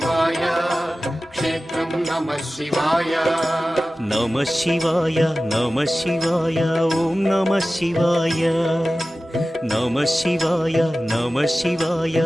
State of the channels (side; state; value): both; normal; correlation 0.96